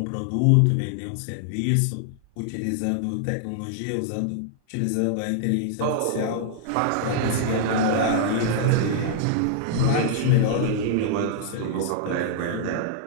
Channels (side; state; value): both; different; correlation -0.01